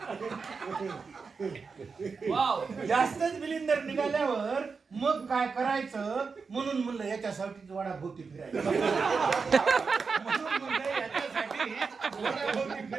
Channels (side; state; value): left; quieter; 5.0 dB